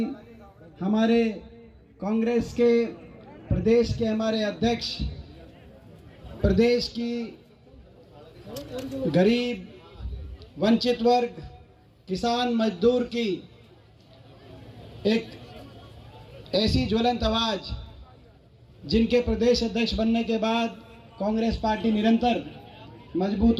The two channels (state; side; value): identical; both; correlation 1.00